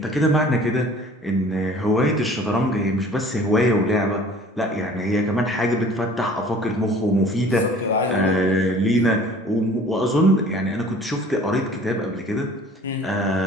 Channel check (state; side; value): normal; both; correlation 0.49